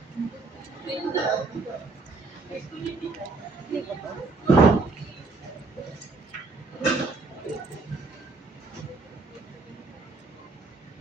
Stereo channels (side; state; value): left; quieter; 3.6 dB